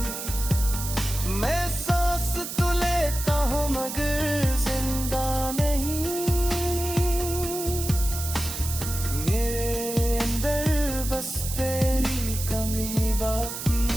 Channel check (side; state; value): right; noise; hiss, 7 dB below the sound